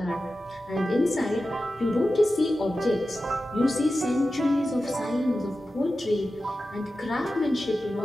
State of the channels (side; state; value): both; normal; correlation 0.93